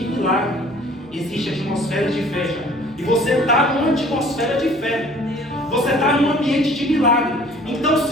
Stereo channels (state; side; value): normal; both; correlation 0.52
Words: milagre existe atmosfera de fé, já. E você está numa atmosfera de fé. Você está num ambiente de milagre. Então,